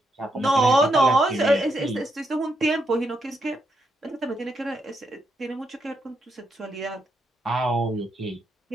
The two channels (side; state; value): both; normal; correlation 0.80